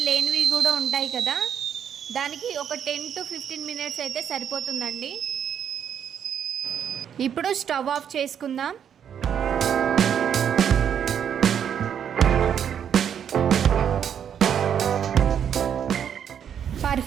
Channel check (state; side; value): quieter; left; 8.6 dB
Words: లేనివి కూడా ఉంటాయి కదా, దానికి ఒక 10 to 15 మినిట్స్ అయితే సరిపోతుందండి. ఇప్పుడు స్టవ్ ఆఫ్ చేసుకుందాం.